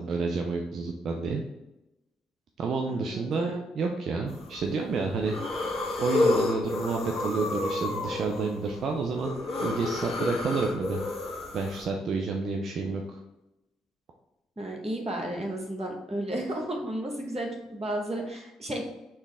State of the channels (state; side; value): normal; both; correlation 0.74